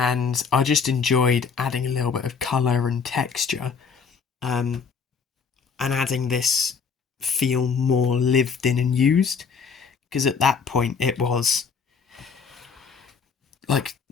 I just enjoyed adding a little bit of colour and texture, and adding this feel more lived in and used, because at that point it was like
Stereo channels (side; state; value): right; quieter; 5.8 dB